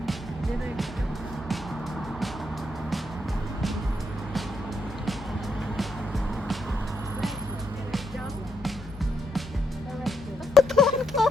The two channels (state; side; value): normal; both; correlation 0.79